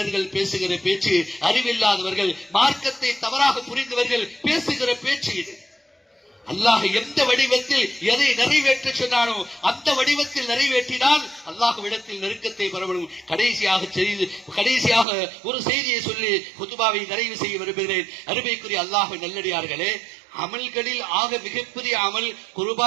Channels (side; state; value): left; drops out; at 15.1 s